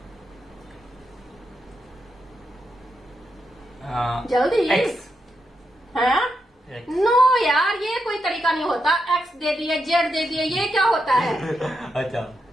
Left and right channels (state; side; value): normal; both; correlation 0.84